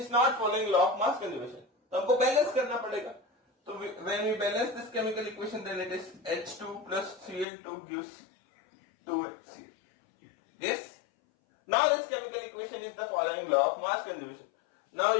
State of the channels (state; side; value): drops out; right; at 7.5 s